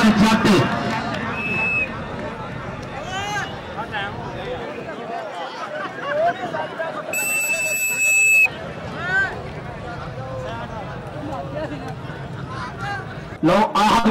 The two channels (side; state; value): both; identical; correlation 1.00